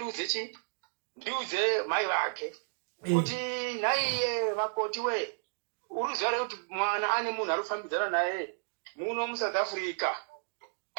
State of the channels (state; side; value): silent; left; digital silence